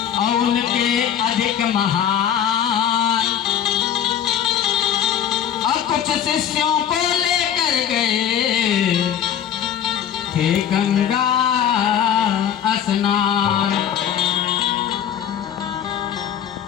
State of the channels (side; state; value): right; quieter; 9.5 dB